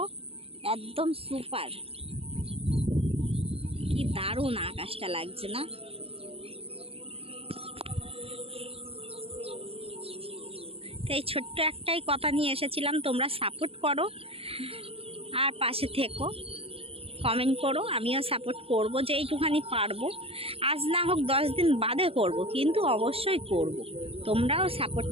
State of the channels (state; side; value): late; left; 0.28 ms